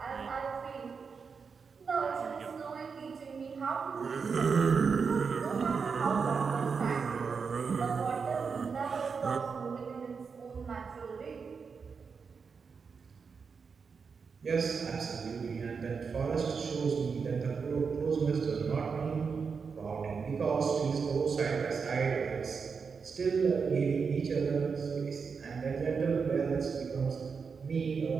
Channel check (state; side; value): quieter; left; 5.5 dB